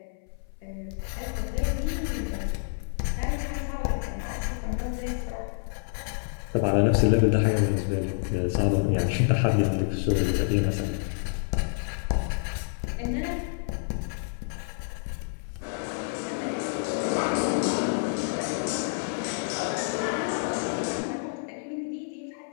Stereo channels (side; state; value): right; silent; 56 dB below the other